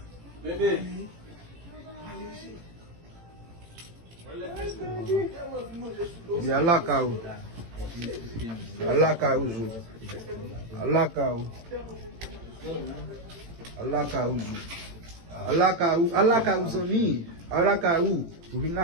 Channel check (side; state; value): left; late; 18 ms